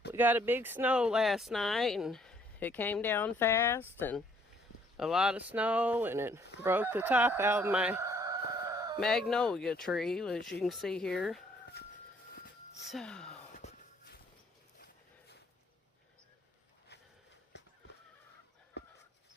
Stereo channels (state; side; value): normal; both; correlation 0.64